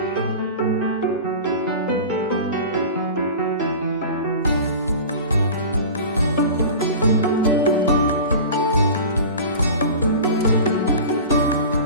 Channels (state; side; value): inverted; both; correlation -0.35